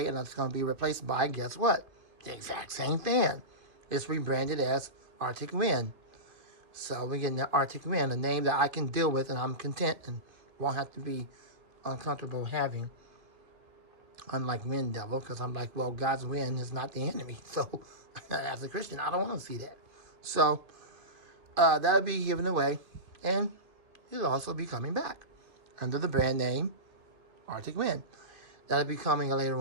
and it's going to be replaced by, guess what? The exact same fan. It's rebranded as Arctic Wind. So we're getting the Arctic Wind, a name that I can deal with and I'm content and won't have to be uncomfortable having. Unlike Wind Devil, because I'm like, well, God's wind is not the enemy. So as a Christian, I don't want to see that. So that'll be given away and it'll also be coming back under the brand name Arctic Wind. That'll be coming later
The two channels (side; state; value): left; late; 2.2 ms